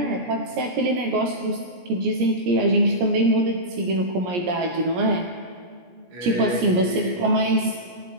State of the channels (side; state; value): left; late; 17 ms